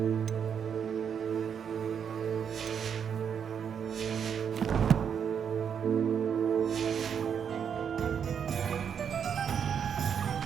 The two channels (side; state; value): left; quieter; 7.6 dB